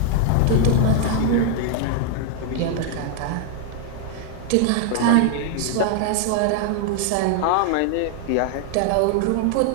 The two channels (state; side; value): different; both; correlation 0.00